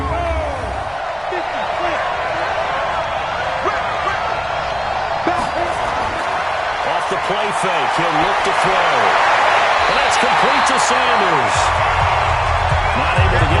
Off the play fake, he'll look to throw. And that's complete to Sanders. Not able to get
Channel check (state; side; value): identical; both; correlation 1.00